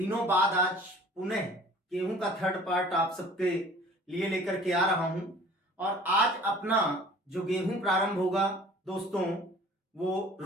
बाद आज पुनः गेहूं का थर्ड पार्ट आप सबके लिए लेकर के आ रहा हूं। और आज अपना जो गेहूं प्रारंभ होगा दोस्तों वो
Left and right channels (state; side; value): normal; both; correlation 0.48